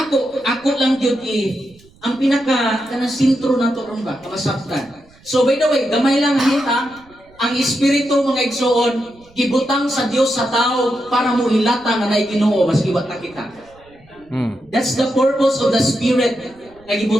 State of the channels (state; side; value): noise; right; rumble, 28 dB below the sound